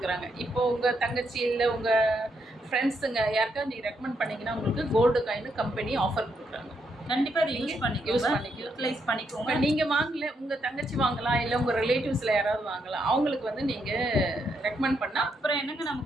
இப்போது உங்கள் தங்கச்சி இல்லை உங்கள் ஃப்ரெண்ட்ஸுங்க யாருக்கா நீங்கள் ரெக்கமெண்ட் பண்ணிங்கன்னா உங்களுக்கு கோல்டு காயின் கம்பெனி ஆஃபர் கொடுக்குறாங்க. கண்டிப்பாக அதை யூஸ் யூட்டிலைஸ் பண்ணிக்கோங்க. நீங்கள் வாங்கல, உங்கள் தங்கச்சி வாங்கலாம், இல்லை உங்கள் ரிலேட்டிவ்ஸில் யாராவது வாங்கலாம், அவங்களுக்கு வந்து நீங்கள் ரெக்கமெண்ட் பண்ணால் அப்புறம் என்னங்க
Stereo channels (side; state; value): both; normal; correlation 0.78